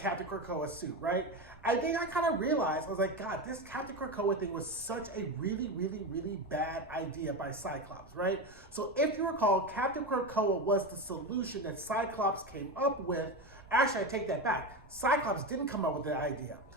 Krakoa suit, right? I think I kind of realized, I was like, God, this Captain Krakoa thing was such a really, really, really bad idea by Cyclops, right? So if you recall, Captain Krakoa was the solution that Cyclops came up with. Actually, I take that back. Cyclops didn't come up with the idea.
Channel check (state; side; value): noise; right; rumble, 24 dB below the sound